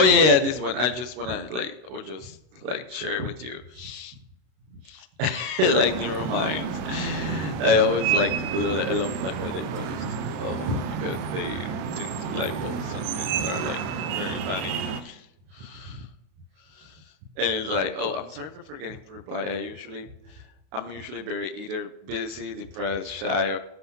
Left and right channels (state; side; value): late; left; 33 ms